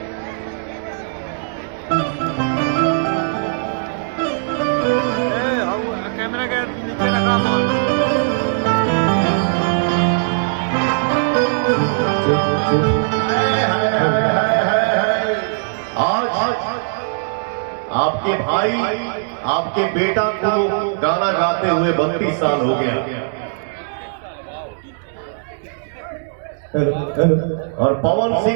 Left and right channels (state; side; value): silent; left; digital silence